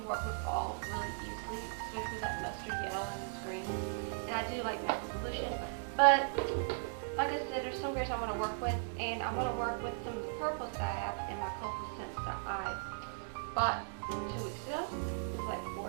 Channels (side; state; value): left; silent; digital silence